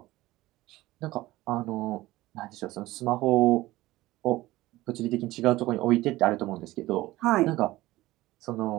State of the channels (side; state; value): left; quieter; 17.7 dB